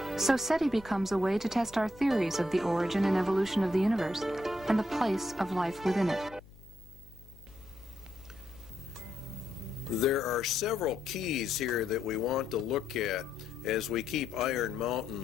So SETI becomes a way to test our theories of the origin and evolution of the universe and the place of life within it. There are several keys here that we want to look at as we keep Iron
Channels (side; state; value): left; noise; hum, 22 dB below the sound